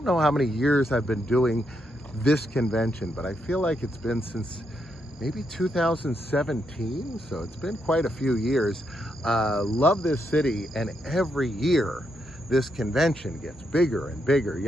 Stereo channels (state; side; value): normal; both; correlation 0.80